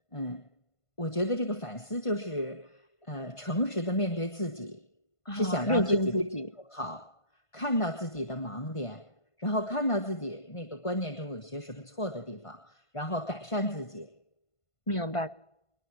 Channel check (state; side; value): late; right; 1.5 ms